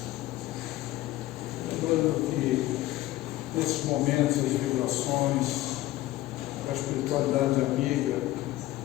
Lembrando que nesses momentos as vibrações da espiritualidade amiga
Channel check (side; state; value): right; quieter; 16.3 dB